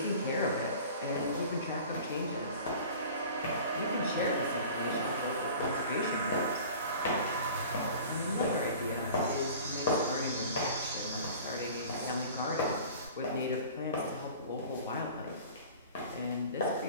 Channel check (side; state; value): both; inverted; correlation -0.42